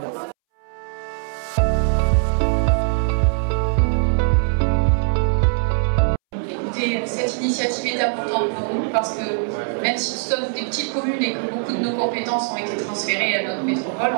Cette initiative est importante pour nous parce que même si nous sommes des petites communes et que beaucoup de nos compétences ont été transférées à notre métropole,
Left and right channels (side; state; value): left; silent; 64 dB below the other